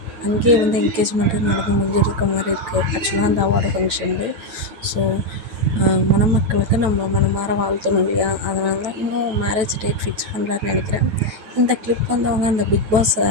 அங்கேயே வந்து என்கேஜ்மெண்ட்டு நடந்து முடிஞ்சிருக்க மாதிரி இருக்குது ஆக்சுவலாக அந்த அவார்டு ஃபங்க்ஷன்லேயே. ஸோ மணமக்களுக்கு நம்ம மனமார வாழ்த்தணும் இல்லையா, அதனால தான் இன்னும் மேரேஜ் டேட் ஃபிக்ஸ் பண்ணலான்னு நினைக்கிறேன். இந்த கிளிப் வந்து அவங்க அந்த பிக் பாஸ்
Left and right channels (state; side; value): late; left; 9.1 ms